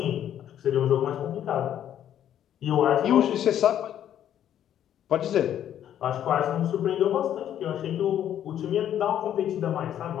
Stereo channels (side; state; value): right; quieter; 10.5 dB